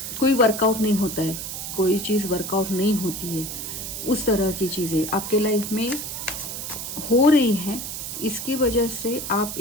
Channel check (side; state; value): right; noise; hiss, 6 dB below the sound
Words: कोई वर्कआउट नहीं होता है, कोई चीज़ वर्कआउट नहीं होती है, उस तरह की चीज़ें आपके लाइफ में हो रही हैं। इसकी वजह से आप